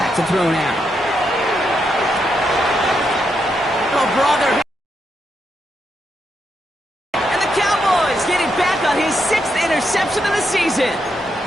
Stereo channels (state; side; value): normal; both; correlation 0.81